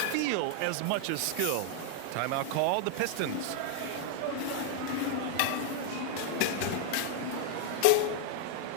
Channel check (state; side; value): different; both; correlation 0.00